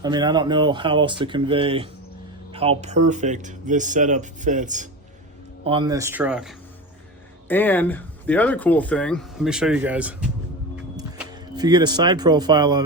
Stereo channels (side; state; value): both; normal; correlation 0.24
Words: I mean, I don't know how else to convey how perfect this setup fits on this truck. And the other cool thing, let me show you guys. If you get a side profile of